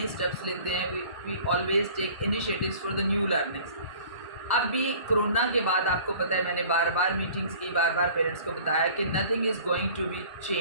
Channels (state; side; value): inverted; both; correlation -0.47